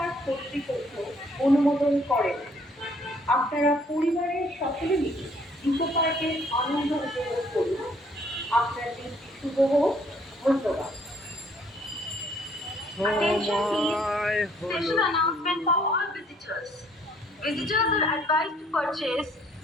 কর্তৃপক্ষ অনুমোদন করেন। আপনারা পরিবারের সকলে মিলে ইকো পার্কের আনন্দ উপভোগ করুন। আপনার দিনটি শুভ হোক। ধন্যবাদ। Attention please. Special announcement for all visitors. Visitors are advised to purchase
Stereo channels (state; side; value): normal; both; correlation 0.63